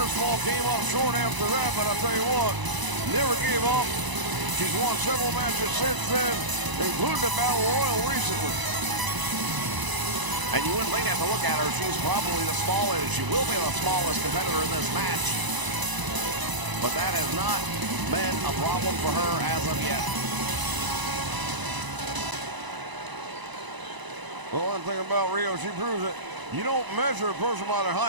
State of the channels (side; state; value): left; late; 1.0 ms